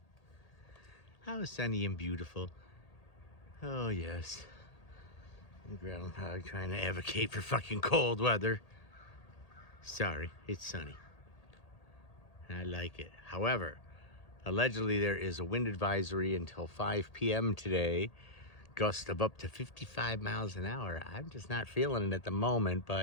How sunny and beautiful. Oh, yes. The groundhog trying to advocate for fucking cold weather. Sorry, it's sunny. I like it. However, allegedly there is a wind advisory until 5 p.m. today. Gust of up to 55 miles an hour. I'm just not feeling it at the moment,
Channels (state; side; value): late; right; 1.8 ms